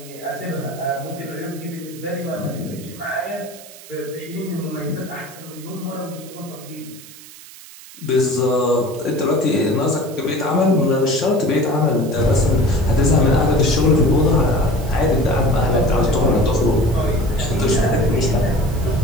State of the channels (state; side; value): noise; right; hiss, 18 dB below the sound